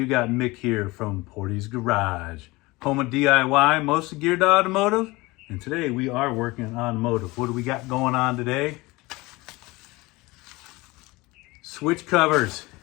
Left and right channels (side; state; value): right; quieter; 22.1 dB